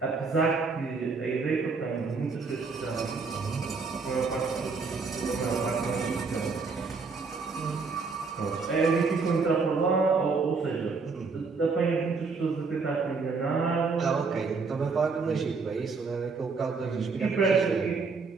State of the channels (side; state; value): left; quieter; 4.5 dB